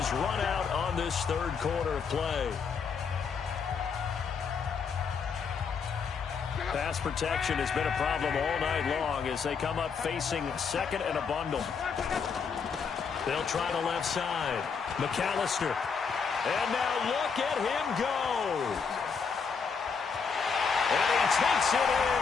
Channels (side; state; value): right; quieter; 5.8 dB